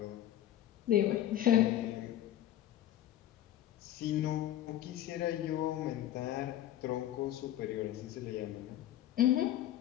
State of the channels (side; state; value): right; quieter; 12.5 dB